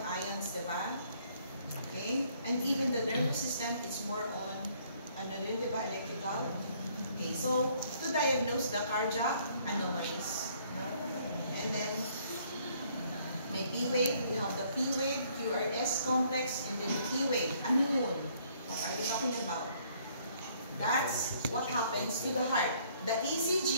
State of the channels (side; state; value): both; inverted; correlation -0.64